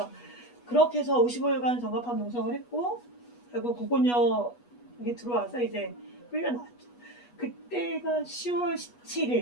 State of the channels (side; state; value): right; late; 8.2 ms